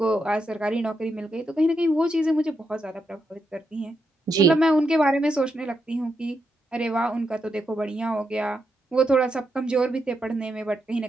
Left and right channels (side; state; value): both; normal; correlation 0.83